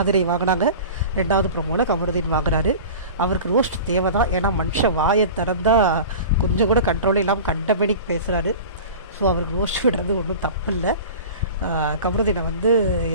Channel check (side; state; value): both; inverted; correlation -0.36